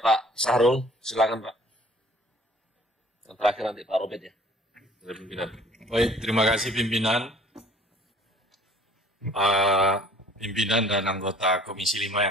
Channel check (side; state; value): both; normal; correlation 0.53